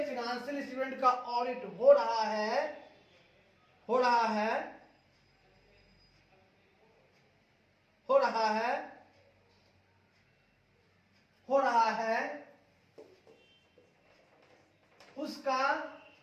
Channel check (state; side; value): identical; both; correlation 1.00